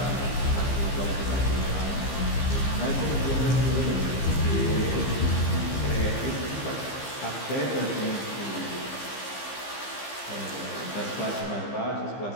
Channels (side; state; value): right; late; 15 ms